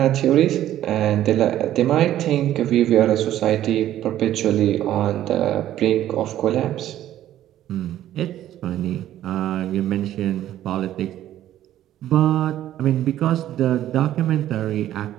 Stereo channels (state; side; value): quieter; left; 12.6 dB